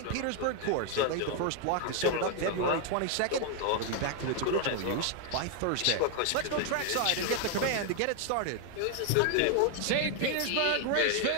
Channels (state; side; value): different; both; correlation 0.01